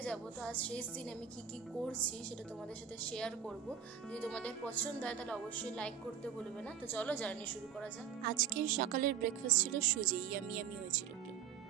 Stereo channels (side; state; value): left; quieter; 8.2 dB